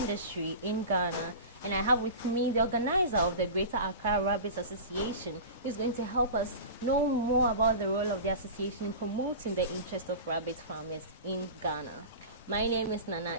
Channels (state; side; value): inverted; both; correlation -0.31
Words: in Ghana. And I have with me the organizer of the Greater Accra Rabbit Association, who is going to help us know more about the role of the association in promoting the interest of rabbit farmers in Ghana. My name is Nana